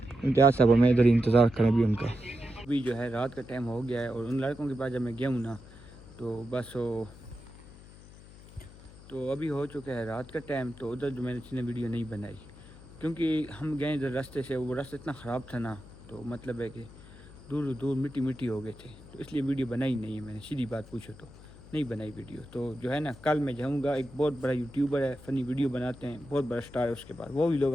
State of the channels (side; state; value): left; noise; hum, 19 dB below the sound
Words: इम्तियाज़ साहब मैं इधर ही इंतज़ार करें अभी उनका। अभी जो है रात का टाइम हो गया है और उन लड़कों के पास जब मैं गया हूँ ना तो बस वो तो अभी हो चुका है रात का टाइम। तो उधर जो मैंने वीडियो नहीं बनाई, क्योंकि हम गए इधर रास्ते से, वो रास्ता इतना ख़राब था ना, तो मतलब है कि दूर दूर मिट्टी हो गए थे, तो इसलिए वीडियो बनाई नहीं है मैंने, सीधी बात पूछो तो नहीं बनाई वीडियो। तो जो है ना कल मैं जाऊँगा, एक बहुत बड़ा यूट्यूबर है, फ़नी वीडियो बनाते हैं, बहुत बड़ा स्टार है उसके पास, वो भी लोग